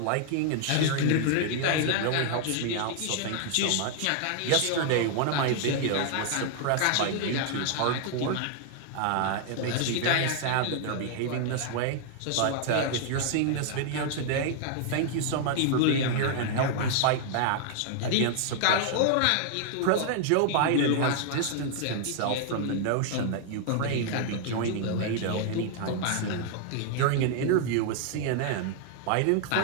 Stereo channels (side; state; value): both; different; correlation 0.00